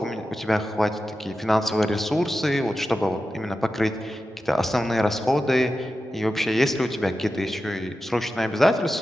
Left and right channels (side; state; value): both; normal; correlation 0.92